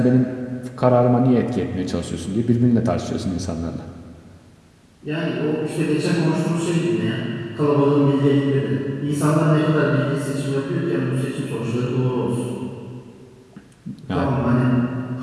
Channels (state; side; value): identical; both; correlation 1.00